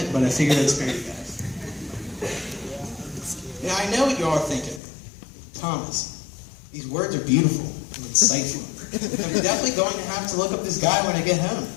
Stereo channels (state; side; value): drops out; right; at 4.8 s